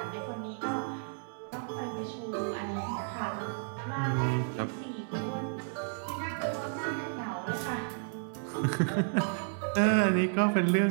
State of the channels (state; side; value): silent; left; digital silence